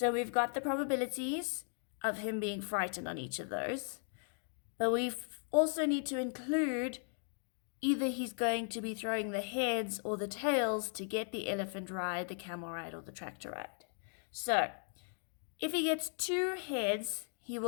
we've got the probabilities of him being frightened on each of those, but we also need to include either he's going to be throwing the heads or the tails to get the elephant ride, the camel ride, or the tractor ride. So if he gets 2 heads, he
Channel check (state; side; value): silent; right; 53 dB below the other